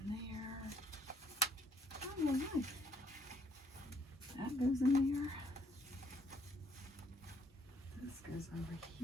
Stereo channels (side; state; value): both; normal; correlation 0.67